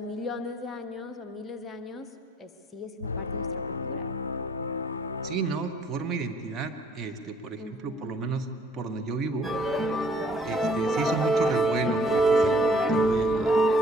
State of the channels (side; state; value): both; normal; correlation 0.61